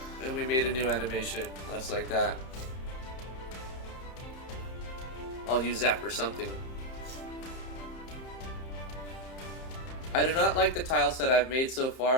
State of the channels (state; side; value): late; right; 31 ms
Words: And we made a new animation, just like that. I'll use that for something. I do not like the tile set I've made so